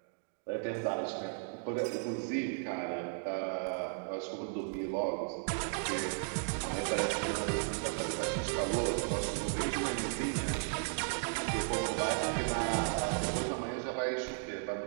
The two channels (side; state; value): left; silent; digital silence